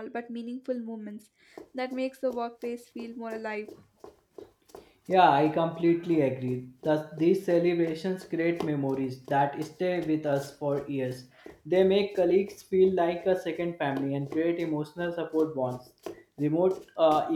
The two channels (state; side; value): identical; both; correlation 1.00